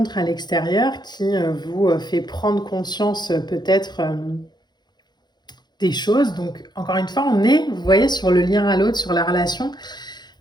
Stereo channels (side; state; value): right; late; 0.21 ms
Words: à l'extérieur qui vous fait prendre conscience peut-être des choses. Donc, encore une fois, on est, vous voyez, sur le lien à l'autre, sur la relation.